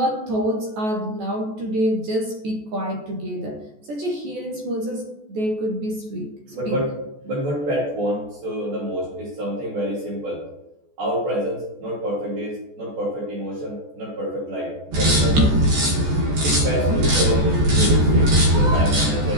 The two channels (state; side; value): late; left; 14 ms